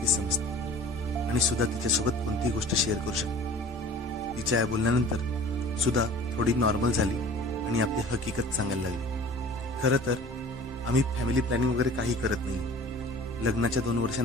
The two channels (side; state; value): both; normal; correlation 0.45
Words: समजते आणि सुधा तिच्यासोबत कोणतीही गोष्ट शेअर करू शकते. तिच्या या बोलण्यानंतर सुधा थोडी नॉर्मल झाली आणि आपली हकीकत सांगायला लागली. खरं तर आम्ही फॅमिली प्लॅनिंग वगैरे काही करत नाही. लग्नाच्या 2